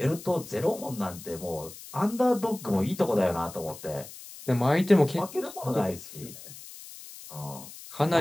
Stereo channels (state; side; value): noise; left; hiss, 15 dB below the sound